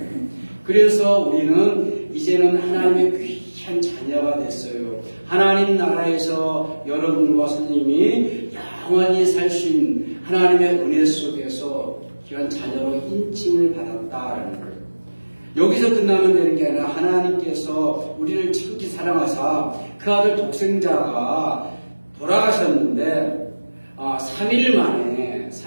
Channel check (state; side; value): inverted; both; correlation -1.00